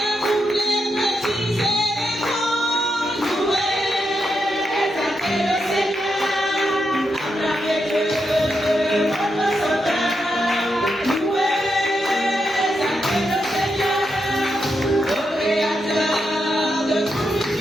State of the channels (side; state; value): both; normal; correlation 0.84